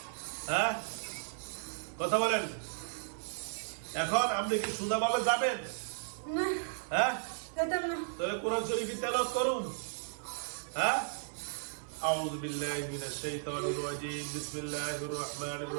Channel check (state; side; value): silent; left; 54 dB below the other